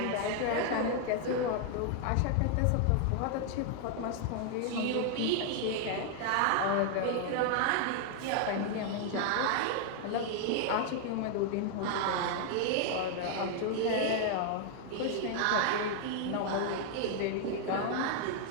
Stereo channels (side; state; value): both; different; correlation 0.00